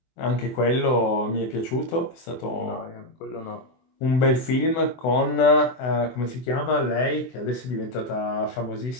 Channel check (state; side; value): late; right; 24 ms